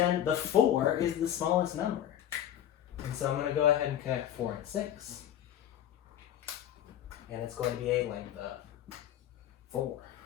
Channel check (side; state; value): right; quieter; 11.1 dB